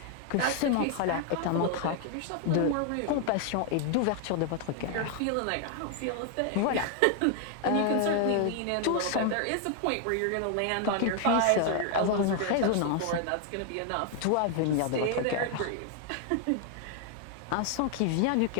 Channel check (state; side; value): different; both; correlation 0.00